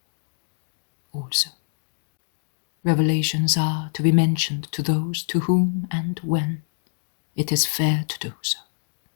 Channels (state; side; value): silent; right; digital silence